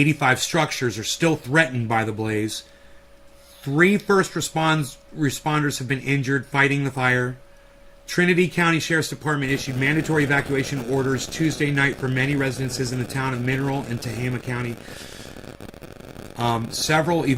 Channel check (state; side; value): identical; both; correlation 1.00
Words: structures are still threatened by the blaze. 3 first responders have been injured fighting the fire. Trinity County Sheriff's Department issued mandatory evacuation orders Tuesday night for many residences in the town of Mineral and Tehama County. Several